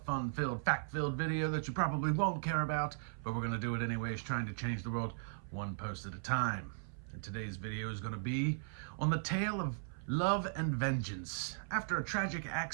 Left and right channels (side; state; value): left; silent; 53 dB below the other